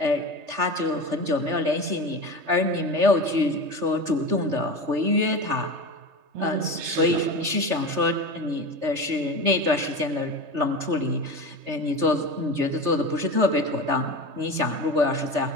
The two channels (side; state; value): left; late; 3.3 ms